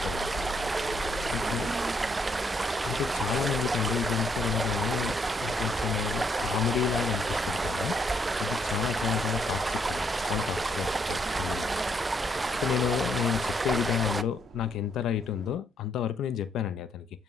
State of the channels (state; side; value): normal; both; correlation 0.73